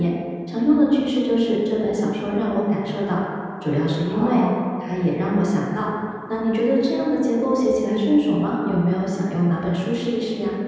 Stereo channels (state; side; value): identical; both; correlation 1.00